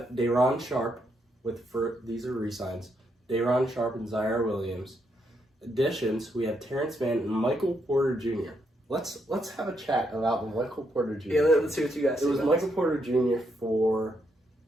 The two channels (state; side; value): normal; both; correlation 0.78